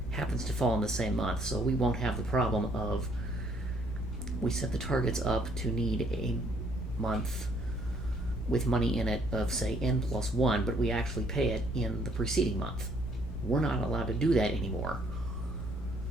happens to fall in the same month, so we won't have the problem of we set the targets up to need a month with money in it of, say, n+1, but we actually pay it in the preceding month. We're not allowed to do that anymore.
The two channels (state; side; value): normal; both; correlation 0.65